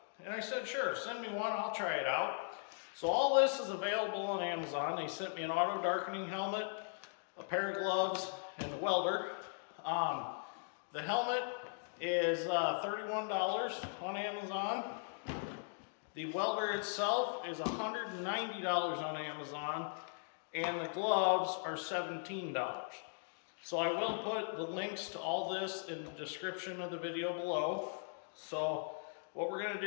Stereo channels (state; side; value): silent; right; digital silence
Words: And I said, sure, send me one, I'll try it out. So all this is available on Amazon. They sent me an auto darkening helmet, a pair of gloves, and the welder. The helmet is $31 on Amazon. The welder itself is $190 on Amazon, and the gloves are $17. So I will put the links to all this in the description of the video below. So what we're going